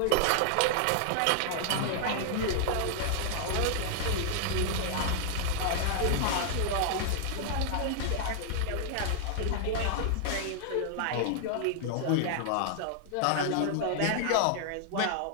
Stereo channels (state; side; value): different; both; correlation 0.00